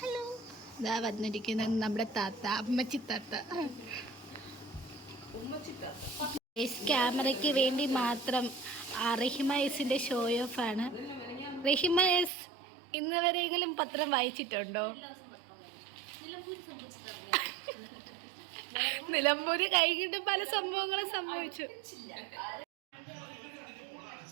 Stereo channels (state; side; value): drops out; left; at 12.3 s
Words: ഇതാ വന്നിരിക്കുന്നത് നമ്മുടെ താത്ത, അമ്മച്ചി താത്ത. ക്യാമറയ്ക്ക് വേണ്ടി മാത്രം റഹിമ എസിൻ്റെ ഷോ ഓഫ് ആണ്. റഹിമ എസ് ഇന്ന് വരെയെങ്കിലും പത്രം വായിച്ചിട്ടുണ്ടോ? നിലമ്പൂര് കൈകിട്ട് പല സംഭവങ്ങളും സംഭവിച്ചു.